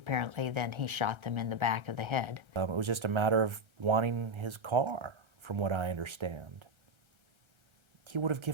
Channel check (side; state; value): left; late; 1.3 ms